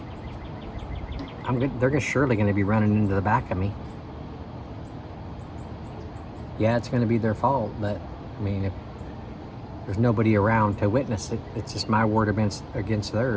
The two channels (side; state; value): both; identical; correlation 1.00